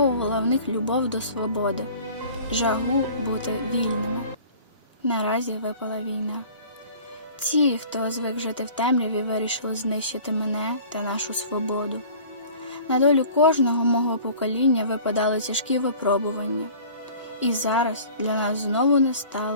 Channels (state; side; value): inverted; both; correlation -0.46